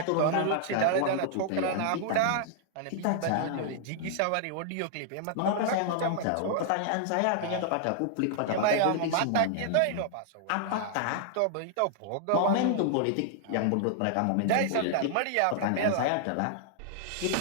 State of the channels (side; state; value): both; different; correlation 0.00